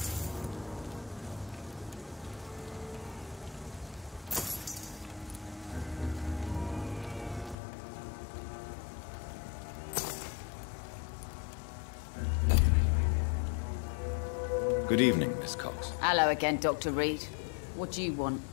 Good evening, Miss Cox. Hello again, Dr. Reed. What do you want?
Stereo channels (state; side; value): drops out; right; at 7.6 s